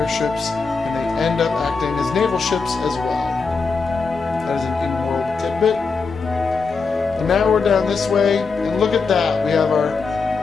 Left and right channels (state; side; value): quieter; right; 4.6 dB